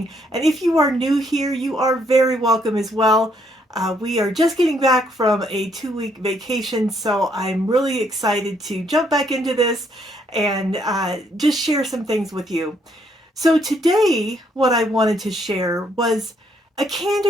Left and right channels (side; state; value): both; normal; correlation 0.70